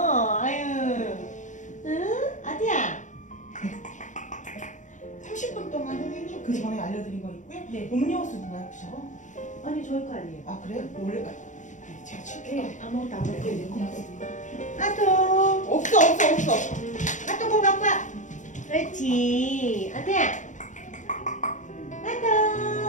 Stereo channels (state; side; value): late; right; 0.36 ms